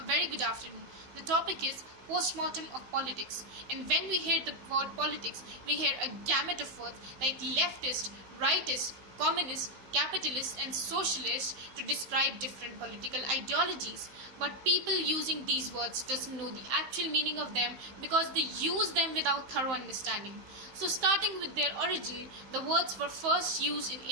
very good afternoon. The topic is postmortem of politics. And when we hear the word politics, we hear a gamut of words like leftist, rightist, communist, capitalist, and socialist to describe different political ideologies. But people using these words doesn't know the actual meaning of them because they use them without thorough understanding. So starting with their origin, the words were first used in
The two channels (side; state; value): left; late; 15 ms